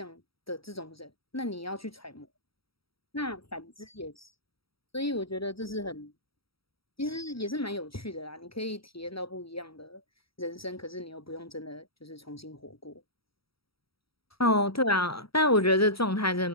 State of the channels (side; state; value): right; late; 0.75 ms